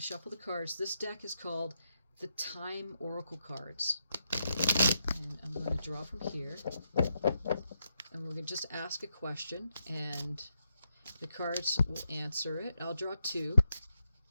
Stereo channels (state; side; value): inverted; both; correlation -0.81